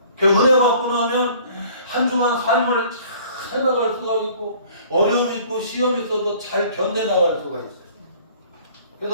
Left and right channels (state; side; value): inverted; both; correlation -0.53